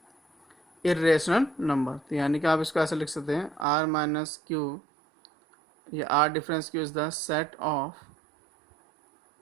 इरेशनल नंबर। तो यानी कि आप इसको ऐसे लिख सकते हैं r माइनस क्यू, ये r difference Q is the set of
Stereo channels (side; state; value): left; drops out; at 3.7 s